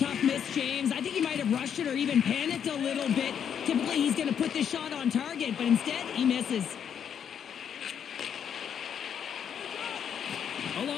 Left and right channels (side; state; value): right; quieter; 8.3 dB